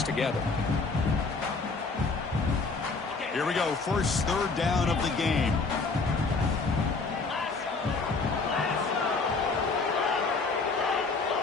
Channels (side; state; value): right; quieter; 4.1 dB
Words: together. Here we go. First 3rd down of the game.